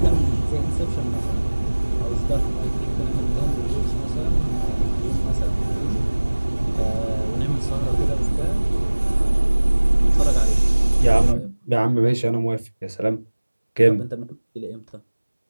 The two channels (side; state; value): both; inverted; correlation -1.00